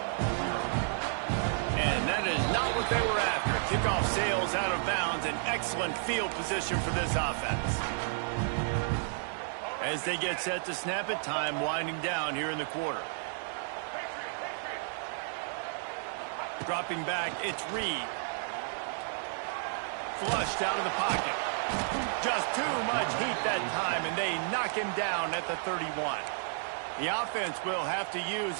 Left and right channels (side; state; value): left; silent; digital silence